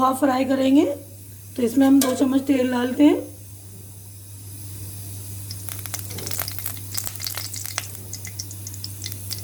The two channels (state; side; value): identical; both; correlation 1.00